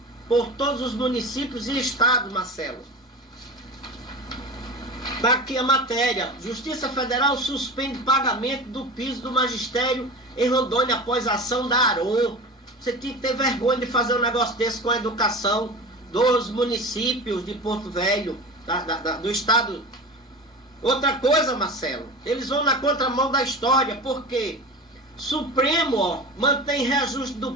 por todos os municípios e estados, Marcelo. Está aqui a matéria. Justiça Federal suspende pagamento do piso do magistério em Rondônia após a ação da ARON. Você tinha que ter vergonha de fazer um negócio desse com a educação dos municípios de Porto Velho, do estado. Outra coisa, Marcelo, eles vão na contramão da história, porque Supremo, ó, mantém reajuste do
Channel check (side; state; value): both; normal; correlation 0.31